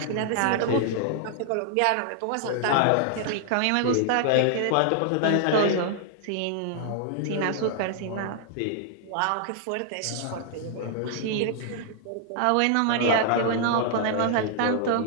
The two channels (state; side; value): different; both; correlation 0.00